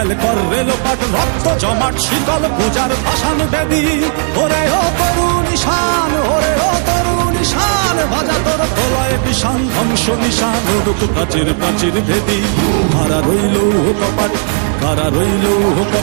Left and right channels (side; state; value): left; silent; 62 dB below the other